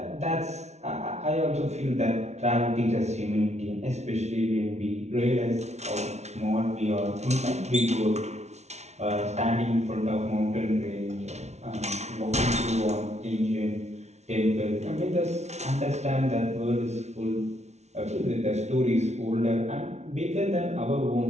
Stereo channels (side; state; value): left; late; 0.32 ms